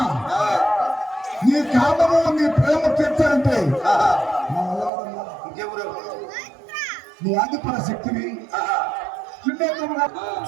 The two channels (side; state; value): left; drops out; at 4.9 s